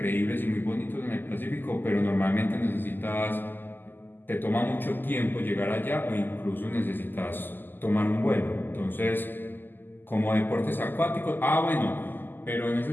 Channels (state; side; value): late; right; 0.091 ms